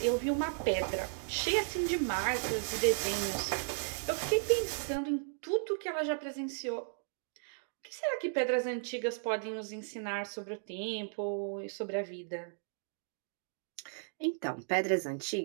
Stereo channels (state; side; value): silent; left; digital silence